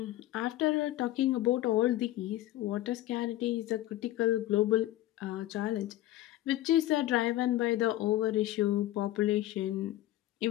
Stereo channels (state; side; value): quieter; right; 14.9 dB